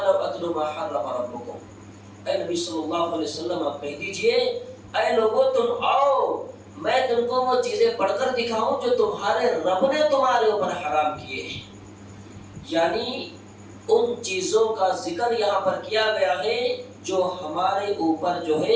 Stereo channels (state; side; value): identical; both; correlation 1.00